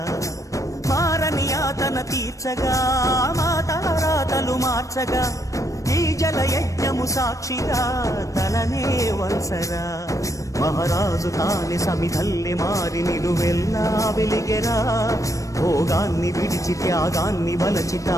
మారని యాతన తీర్చగా మాతారాతలు మార్చగా ఈ జల యజ్ఞము సాక్షిగా తలనే వంచరా మహారాజు తాని సమిధల్లి మారి నిలువెల్లా వెలిగెరా భోగాన్ని విడిచి త్యాగాన్ని వలచి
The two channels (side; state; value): right; late; 0.16 ms